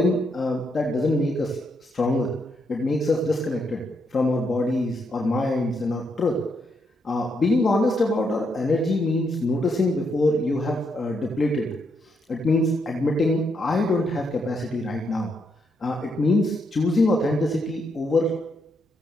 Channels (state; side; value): normal; both; correlation 0.78